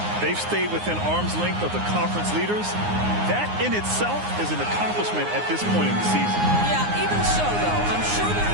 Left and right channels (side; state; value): left; late; 9.6 ms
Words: they've stayed within arm's length of the conference leaders. That in itself is an accomplishment at this point in the season. Yeah, even so, though, I'm sure they're